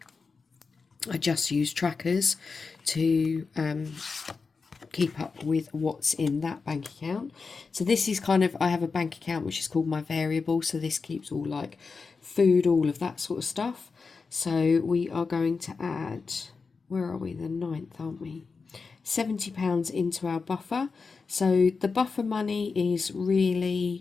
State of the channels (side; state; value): right; quieter; 4.7 dB